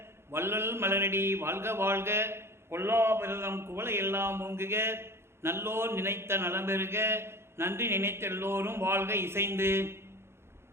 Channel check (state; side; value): late; left; 0.12 ms